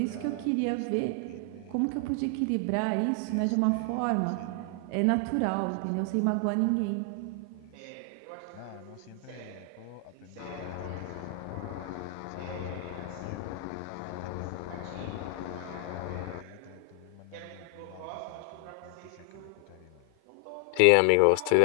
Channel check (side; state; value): both; different; correlation 0.00